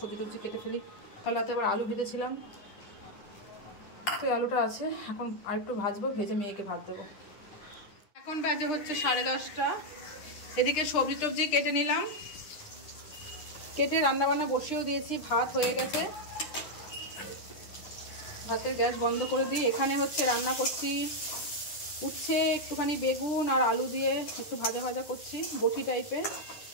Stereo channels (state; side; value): late; right; 9.9 ms